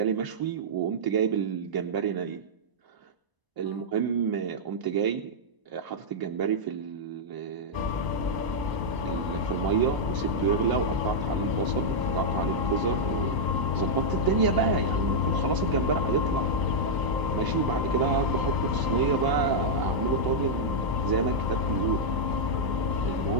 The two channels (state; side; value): late; left; 1.0 ms